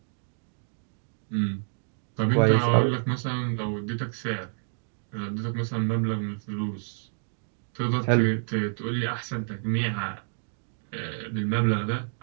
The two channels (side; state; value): left; silent; digital silence